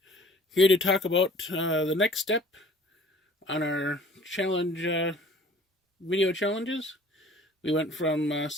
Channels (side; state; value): both; normal; correlation 0.50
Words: here to talk about the next step on our challenge video challenges. We went from